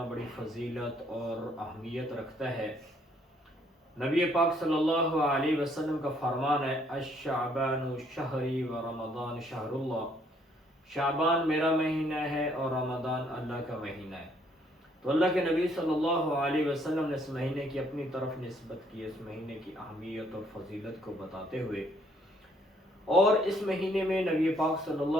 بڑی فضیلت اور اہمیت رکھتا ہے۔ نبی پاک صلی اللہ علیہ وسلم کا فرمان ہے، الشعبان شہری و رمضان شہر اللہ۔ شعبان میرا مہینہ ہے اور رمضان اللہ کا مہینہ ہے۔ تو اللہ کے نبی صلی اللہ علیہ وسلم نے اس مہینے کی اپنی طرف نسبت کی، اس مہینے کی اہمیت اور فضیلت کو بتاتے ہوئے، اور اس مہینے میں نبی پاک صلی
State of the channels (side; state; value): both; normal; correlation 0.66